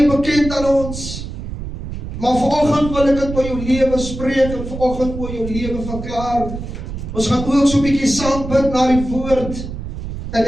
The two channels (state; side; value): noise; right; rumble, 8 dB below the sound